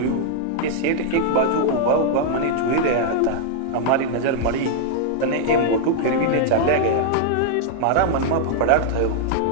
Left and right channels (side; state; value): both; different; correlation -0.01